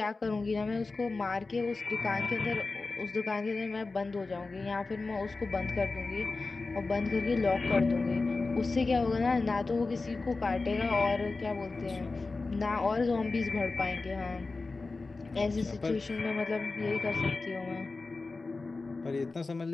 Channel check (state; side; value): quieter; right; 3.7 dB